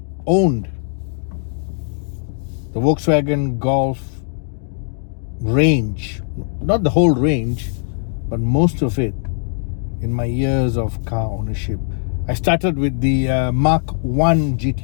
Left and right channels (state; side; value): silent; right; digital silence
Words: owned the Volkswagen Golf range, not the whole range, but most of it in my years of car ownership. I started with the Mark 1